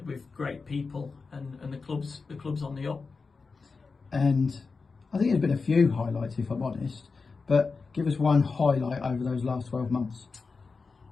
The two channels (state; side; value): quieter; right; 4.5 dB